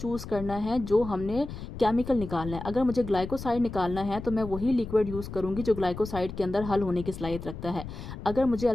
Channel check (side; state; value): left; noise; rumble, 10 dB below the sound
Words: करना है जो हमने केमिकल निकालना है। अगर मुझे ग्लाइकोसाइड निकालना है तो मैं वही लिक्विड यूज़ करूँगी जो ग्लाइकोसाइड के अंदर हल होने की सलाहियत रखता है। अगर मुझे